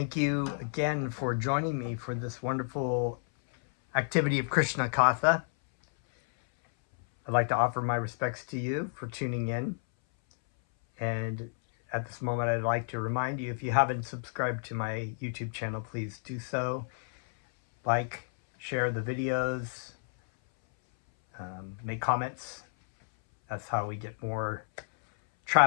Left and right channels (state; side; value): silent; right; 57 dB below the other